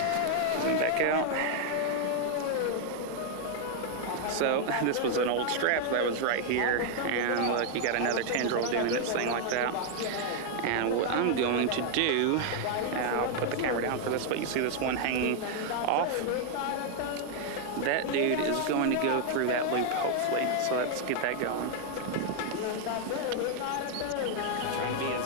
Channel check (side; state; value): both; different; correlation 0.00